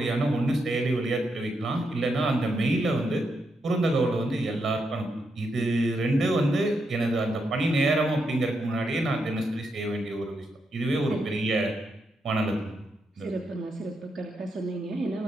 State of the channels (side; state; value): both; normal; correlation 0.82